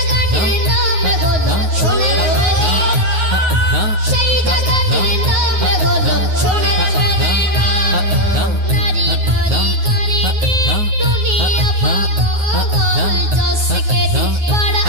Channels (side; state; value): left; late; 9.4 ms